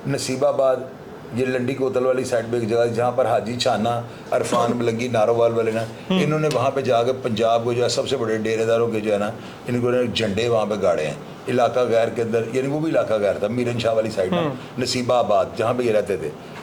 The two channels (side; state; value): both; identical; correlation 1.00